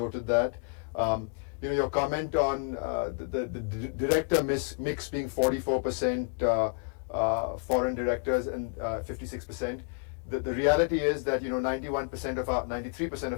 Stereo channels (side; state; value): right; quieter; 39.7 dB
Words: that. Your comment on the director mix being 44% foreign directors and 56%. The reality is that 93%